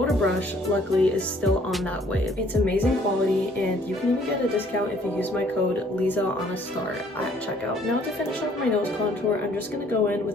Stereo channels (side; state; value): both; normal; correlation 0.61